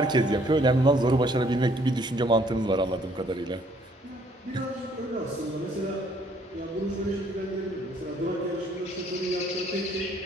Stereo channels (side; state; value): both; normal; correlation 0.63